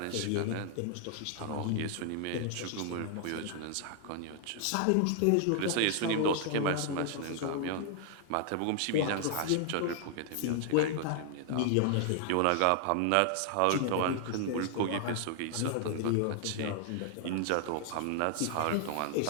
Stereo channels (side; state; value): both; different; correlation 0.00